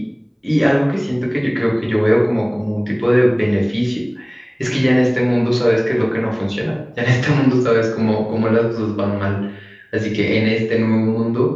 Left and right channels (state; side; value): identical; both; correlation 1.00